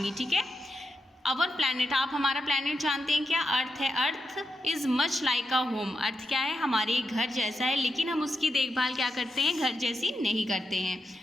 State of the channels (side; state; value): both; normal; correlation 0.86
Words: ठीक है, अवर प्लैनेट, आप हमारा प्लैनेट जानते हैं क्या? अर्थ है। Earth is much like a home. Earth क्या है? हमारे घर जैसा है, लेकिन हम उसकी देखभाल क्या करते हैं? घर जैसी नहीं करते हैं।